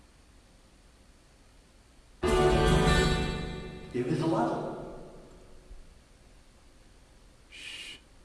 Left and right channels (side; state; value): both; identical; correlation 1.00